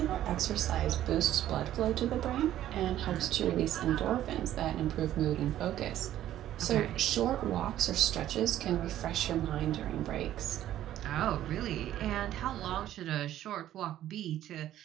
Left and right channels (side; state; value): left; quieter; 12.6 dB